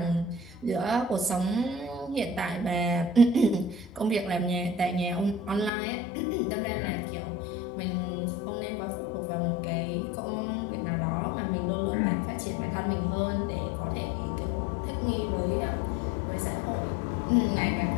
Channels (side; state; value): right; drops out; at 5.7 s